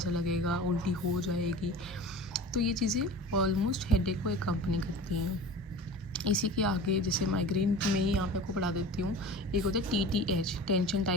लगेगा, उल्टी हो जाएगी। तो ये चीज़ें ऑलमोस्ट हेडेक को एकम्पनी करती हैं। इसी के आगे जैसे माइग्रेन में ही यहाँ पे आपको पढ़ा देती हूँ, एक होता है TTH, टेंशन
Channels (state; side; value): normal; both; correlation 0.36